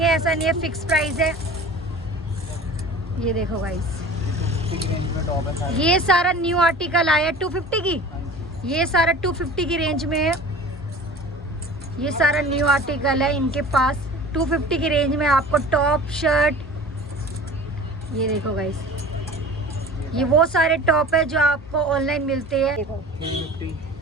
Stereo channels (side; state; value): both; normal; correlation 0.40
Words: ऐसा नहीं है फिक्स प्राइस है। ये देखो गाइस ये सारा न्यू आर्टिकल आया 250 की, ये सारा 250 की रेंज में है। ये सारा न्यू आर्टिकल है इनके पास 250 की रेंज में आपको टॉप शर्ट। ये देखो गाइस ये वो सारे टॉप है जो आपको ऑनलाइन मिलते हैं। देखो